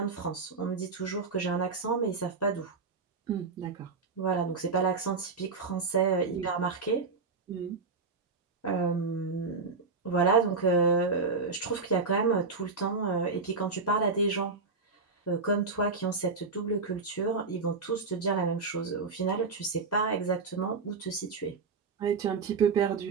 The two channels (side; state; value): left; quieter; 4.3 dB